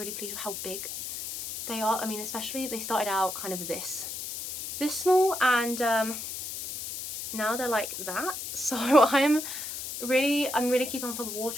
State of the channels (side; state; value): left; noise; hiss, 7 dB below the sound